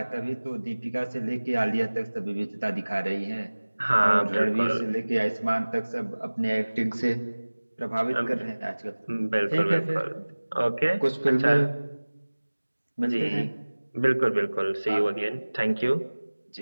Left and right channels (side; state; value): both; inverted; correlation -1.00